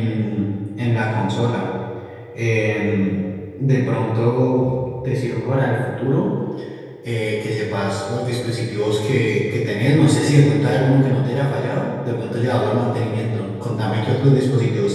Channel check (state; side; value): identical; both; correlation 1.00